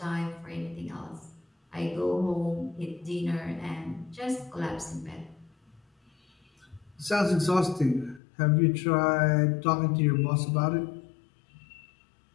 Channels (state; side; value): drops out; right; at 8.2 s